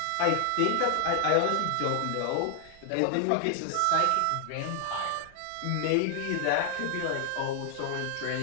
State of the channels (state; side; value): different; both; correlation 0.00